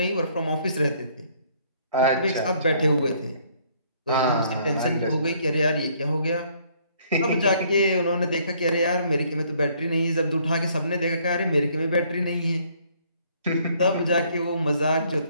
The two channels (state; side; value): inverted; both; correlation -0.64